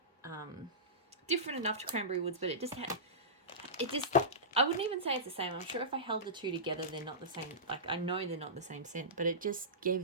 different enough to Cranberry Woods, but I wouldn't even say it's the same. I'm sure if I held the two together, they're not the same. Like, I know they're not the same scent, but it just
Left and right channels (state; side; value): normal; both; correlation -0.19